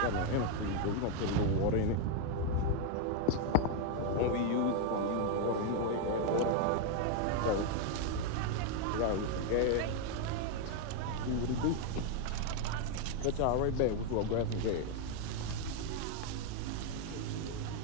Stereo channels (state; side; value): different; both; correlation 0.01